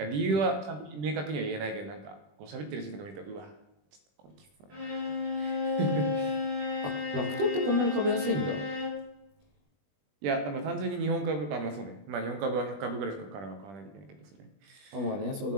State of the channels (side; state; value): left; late; 20 ms